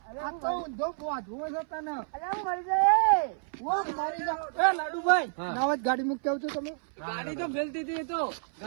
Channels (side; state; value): left; silent; 58 dB below the other